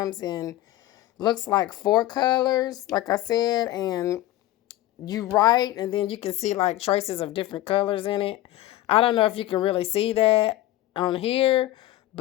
in, looks like 4 colors, like I said, and you write, and then you can see like traces of different colors in it. I don't know if you can really see that on here,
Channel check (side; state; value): right; quieter; 15.2 dB